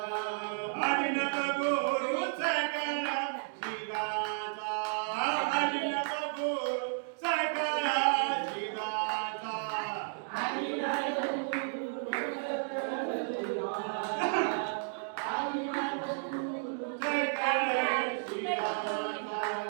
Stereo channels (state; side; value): silent; left; digital silence